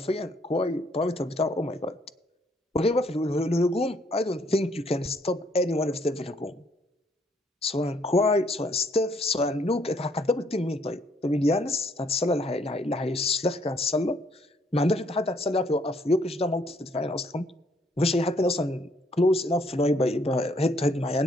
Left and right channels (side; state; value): both; normal; correlation 0.67